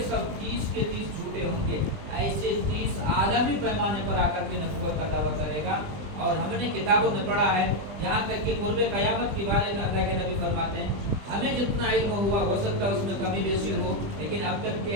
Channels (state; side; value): late; left; 20 ms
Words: سب 30 کے 30 جھوٹے ہوں گے. ایسے 30 عالمی پیمانے پر آ کر کے نبوت کا دعویٰ کرے گا. اور ہم نے کتابوں میں پڑھا ہے, یہاں تک کہ قرب قیامت کے بارے میں اللہ کے نبی فرماتے ہیں ہمیں جتنا علم ہوا ہو سکتا ہے اس میں کمی بیشی ہو, لیکن اب تک کے